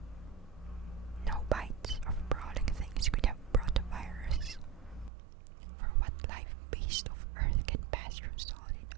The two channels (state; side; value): drops out; left; at 5.1 s